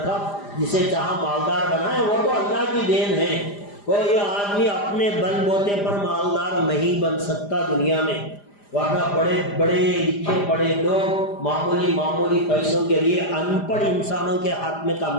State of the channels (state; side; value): late; right; 5.0 ms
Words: جسے چاہا مالدار بنایا، وہ تو اللہ کی دین ہے۔ کوئی آدمی اپنے بل بوتے پر مالدار نہیں بن سکتا دنیا میں، ورنہ بڑے بڑے لکھے پڑھے لوگ معمولی پیسوں کے لیے ان پڑھ انسانوں کے ہاتھ میں